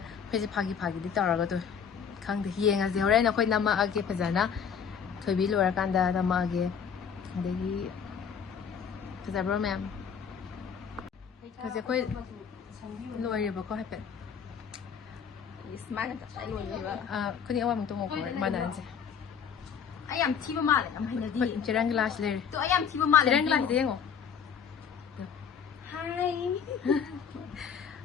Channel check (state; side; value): quieter; right; 7.2 dB